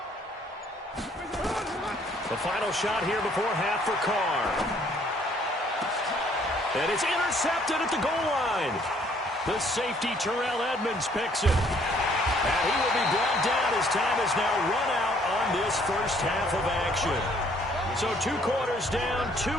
The final shot here before half for Carr. And it's intercepted at the goal line. The safety, Terrell Edmonds, picks it. And he will be brought down as time has now run out on this first half of action. So 2 quarters down, 2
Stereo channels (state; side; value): normal; both; correlation 0.63